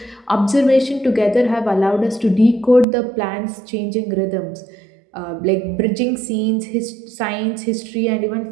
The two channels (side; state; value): left; drops out; at 2.9 s